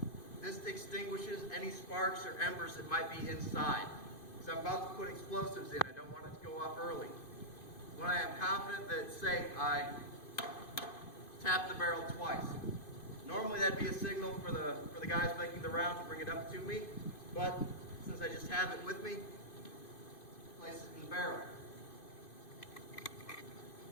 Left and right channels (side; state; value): right; late; 2.5 ms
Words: This extinguishes any sparks or embers that might be inside. So I'm about to put explosives in. I don't want it to go off early. When I am confident that it's safe, I tap the barrel twice. Normally that'd be a signal for the guys making the round to bring it up to me, but since I just have it with me, place it in the barrel.